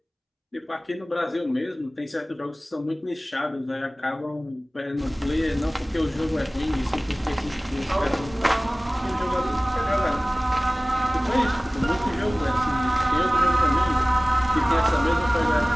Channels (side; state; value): both; normal; correlation 0.98